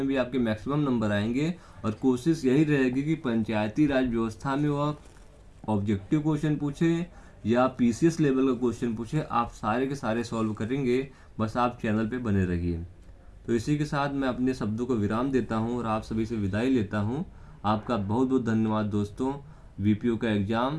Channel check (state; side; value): identical; both; correlation 1.00